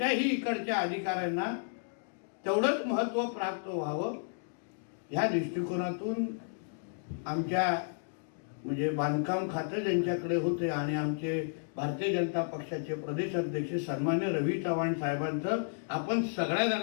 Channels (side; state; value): right; silent; digital silence